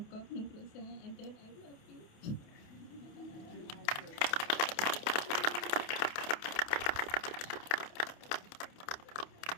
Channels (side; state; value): right; late; 29 ms